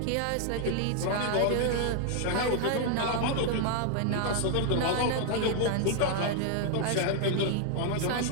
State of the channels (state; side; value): different; both; correlation 0.00